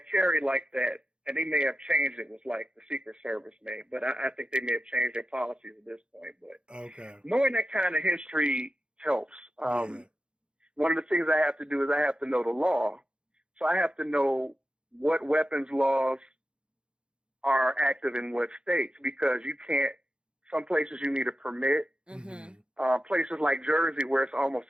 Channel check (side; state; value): left; late; 0.054 ms